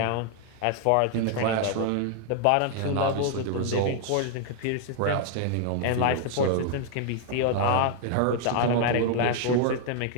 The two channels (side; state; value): both; different; correlation 0.00